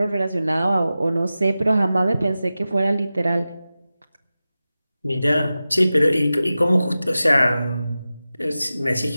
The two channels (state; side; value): inverted; both; correlation -0.94